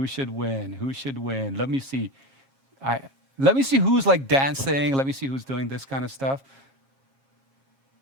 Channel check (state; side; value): late; left; 7.4 ms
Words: me see. Let me see who's dancing. Let me see who's doing this kind of stuff.